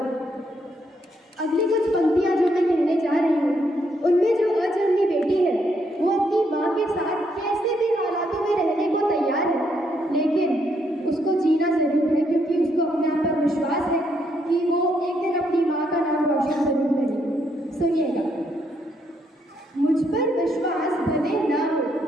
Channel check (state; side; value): normal; both; correlation 0.75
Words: अगली कुछ पंक्तियाँ जो मैं कहने जा रही हूँ, उनमें जो अजन्मी बेटी है वो अपनी माँ के साथ कैसे भी हालातों में रहने को तैयार है, लेकिन उसको जीना जरूर है, क्योंकि उसको अपने आप पर विश्वास है कि वो एक दिन अपनी माँ का नाम रोशन जरूर करेगी। सुनिएगा, मुझ पर विश्वास भले ना हो,